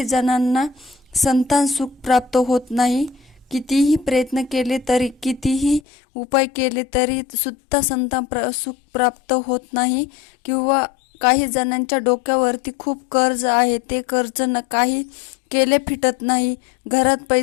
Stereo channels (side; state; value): right; drops out; at 5.8 s